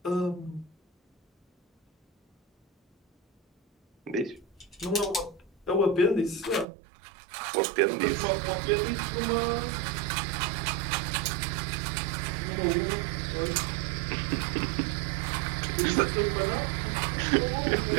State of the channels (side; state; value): left; drops out; at 6.7 s